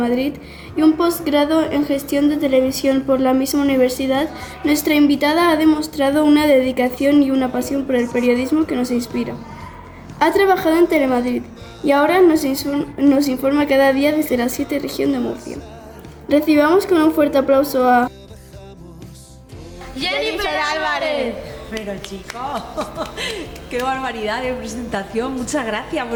y un posgrado en Gestión de Televisión por la misma universidad, nuestra invitada ha demostrado una dedicación y una pasión por el periodismo que nos inspira. Ha trabajado en Telemadrid y ahora nos informa cada día desde la 7 región de Murcia. Recibamos con un fuerte aplauso a Jennifer Álvarez. Pero chicos, qué barbaridad de presentación, muchas gracias,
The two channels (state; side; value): identical; both; correlation 1.00